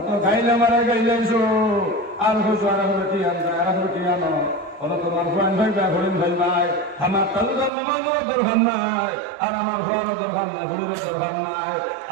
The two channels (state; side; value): drops out; left; at 7.7 s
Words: খাইলে মারা গাইলাইছো আর হইছো আর রুটি আনতে আর রুটি আনো বলো তোমার ফুয়ান ভাই বা হরিণ ভাই নাই আমার তালুদার নামাজেরও দরকার নাই আর আমার ফুয়ারও দরকার নাই হরিরও দরকার নাই